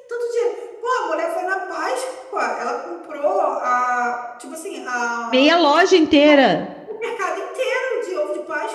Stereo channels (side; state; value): both; identical; correlation 1.00